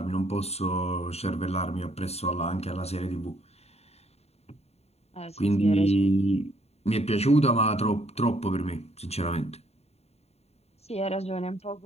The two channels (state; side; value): late; right; 0.30 ms